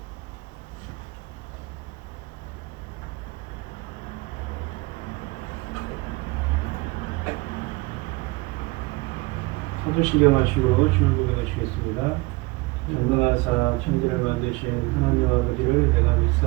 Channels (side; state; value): left; quieter; 24.0 dB